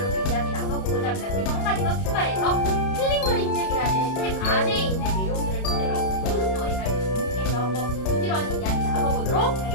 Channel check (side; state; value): right; late; 31 ms